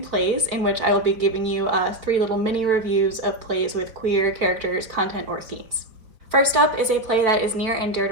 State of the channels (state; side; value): late; left; 4.3 ms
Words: in which I will be giving you 3 little mini reviews of plays with queer characters, content, or themes. First up is a play that is near and dear